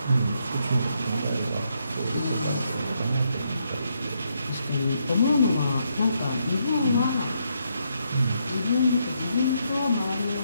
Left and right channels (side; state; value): both; inverted; correlation -0.77